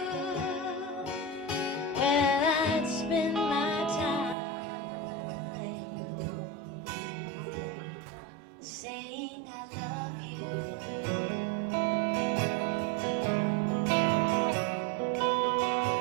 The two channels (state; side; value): drops out; left; at 4.4 s